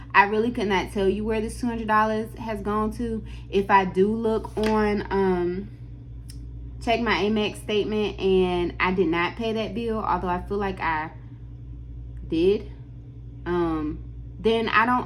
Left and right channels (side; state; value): both; identical; correlation 1.00